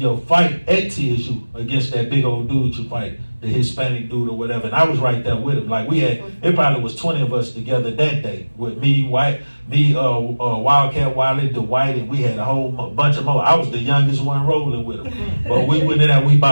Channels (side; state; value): both; inverted; correlation -1.00